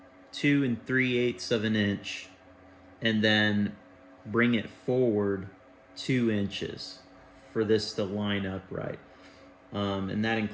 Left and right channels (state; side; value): identical; both; correlation 1.00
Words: 3/8 of an inch and then bring it forward 2 inches for this to line up right. And that